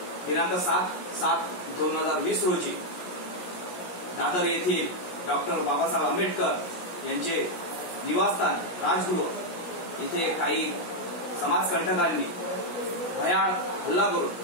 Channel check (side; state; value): right; late; 17 ms